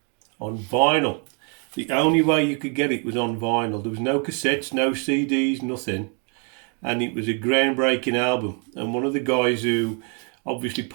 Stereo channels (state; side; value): quieter; left; 38.6 dB